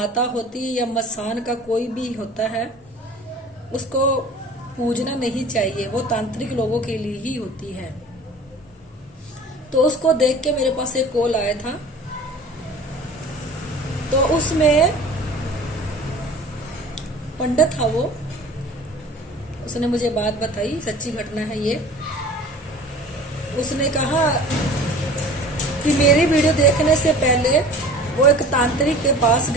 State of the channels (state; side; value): normal; both; correlation 0.43